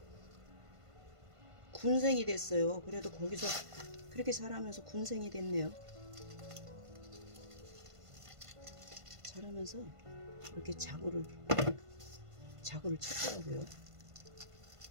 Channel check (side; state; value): left; late; 1.5 ms